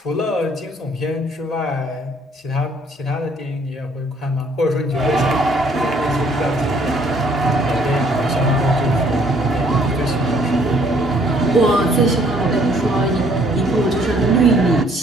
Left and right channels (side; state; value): both; normal; correlation 0.62